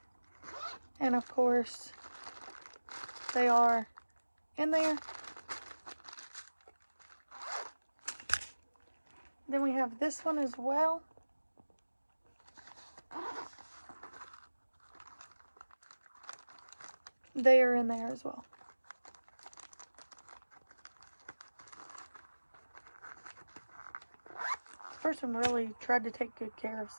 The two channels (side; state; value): both; inverted; correlation -1.00